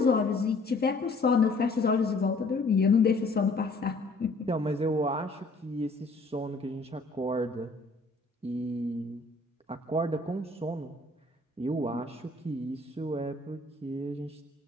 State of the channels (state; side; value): quieter; right; 3.2 dB